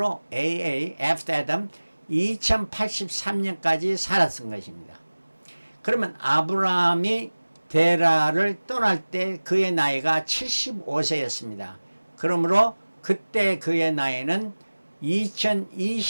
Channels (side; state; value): both; inverted; correlation -1.00